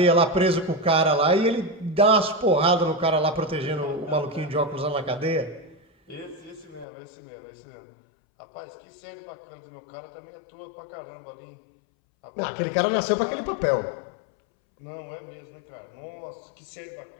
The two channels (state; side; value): drops out; right; at 6.9 s